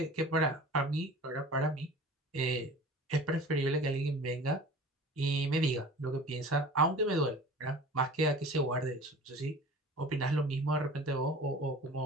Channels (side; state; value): both; normal; correlation 0.41